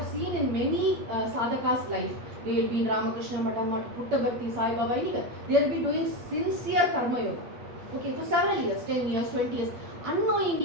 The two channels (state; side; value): late; left; 8.5 ms